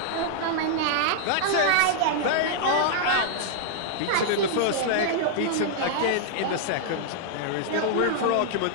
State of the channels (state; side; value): different; both; correlation -0.01